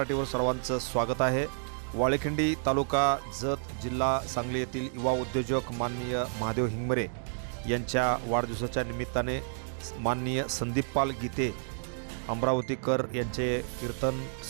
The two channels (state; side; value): silent; left; digital silence